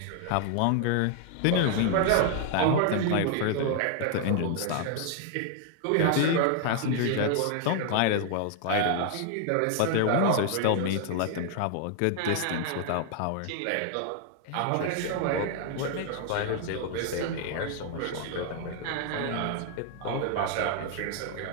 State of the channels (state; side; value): different; both; correlation 0.00